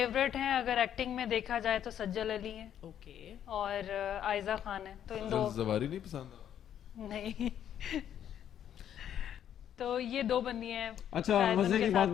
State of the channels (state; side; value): quieter; right; 10.0 dB